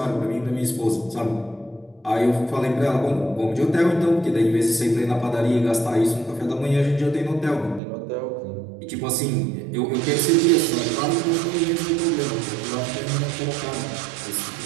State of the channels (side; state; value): left; drops out; at 7.8 s